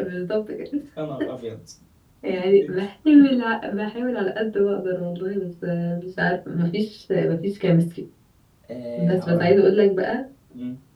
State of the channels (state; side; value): identical; both; correlation 1.00